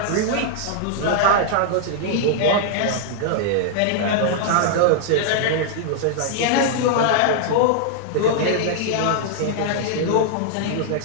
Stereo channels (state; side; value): different; both; correlation -0.01